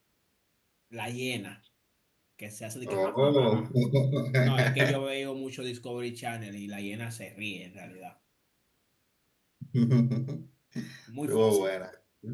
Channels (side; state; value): both; identical; correlation 1.00